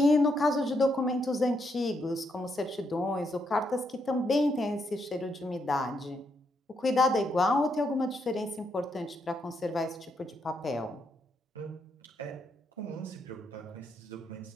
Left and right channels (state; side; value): normal; both; correlation 0.78